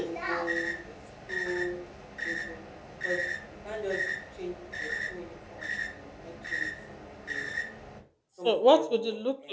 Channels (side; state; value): both; identical; correlation 1.00